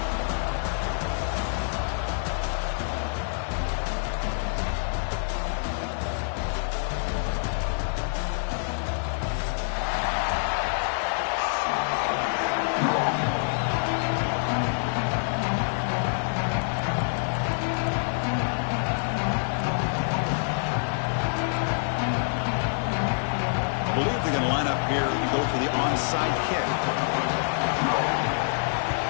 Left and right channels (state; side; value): silent; right; digital silence